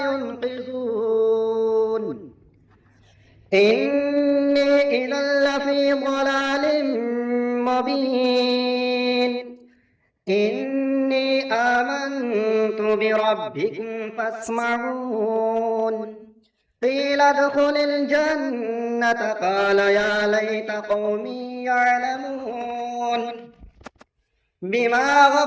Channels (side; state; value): both; identical; correlation 1.00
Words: ينقذون إني إذا لفي ضلال مبين إني آمنت بربكم فاسمعون قيل ادخل الجنة قال يا ليت قومي يعلمون بما